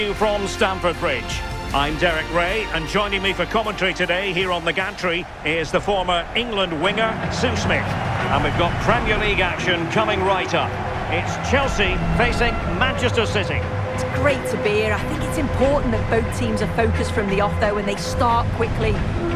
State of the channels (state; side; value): identical; both; correlation 1.00